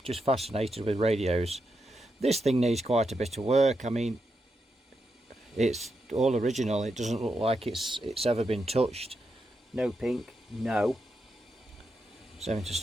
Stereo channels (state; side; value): normal; both; correlation 0.85